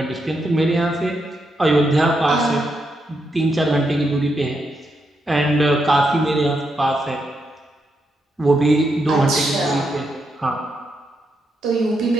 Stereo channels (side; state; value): both; normal; correlation 0.81